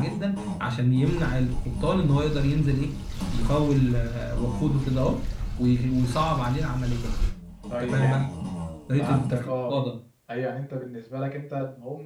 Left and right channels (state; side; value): identical; both; correlation 1.00